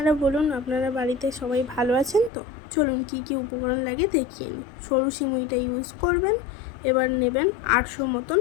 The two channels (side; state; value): right; drops out; at 2.3 s